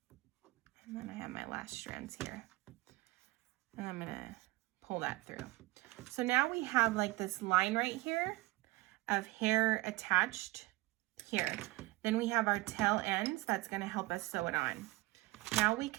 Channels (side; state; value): left; quieter; 20.2 dB